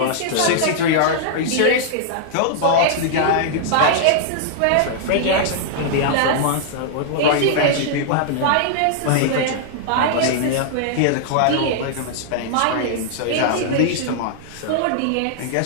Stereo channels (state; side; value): different; both; correlation -0.01